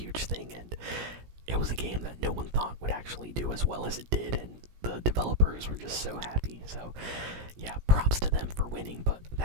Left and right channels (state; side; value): late; left; 17 ms